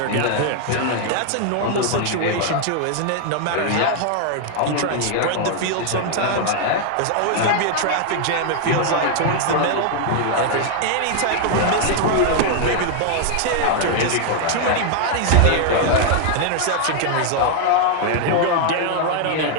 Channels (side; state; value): both; different; correlation 0.00